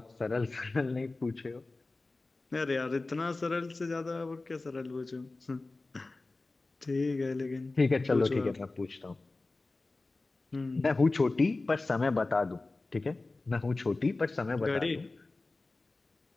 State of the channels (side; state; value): right; quieter; 3.3 dB